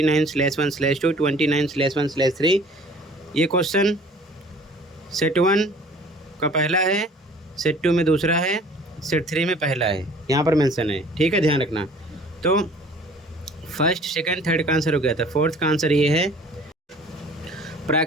29/1/3। ये क्वेश्चन सेट 1 का पहला है, सेट 2 में दूसरा है, सेट 3 में पहला है, यहाँ पर मेंशन है, ठीक है, ध्यान रखना। तो फर्स्ट, सेकंड, थर्ड का आंसर हो गया था। फोर्थ का आंसर ये है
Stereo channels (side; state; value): both; normal; correlation 0.50